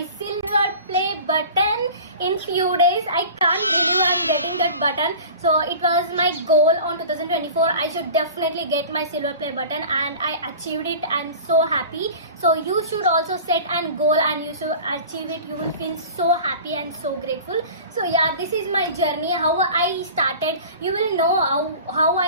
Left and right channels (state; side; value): inverted; both; correlation -0.38